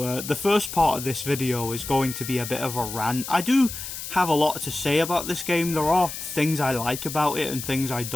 the first part of this video is going to be a bit of a rant. I do have a lot to say about this game. There are things I like about it and things I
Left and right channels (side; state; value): left; noise; hiss, 8 dB below the sound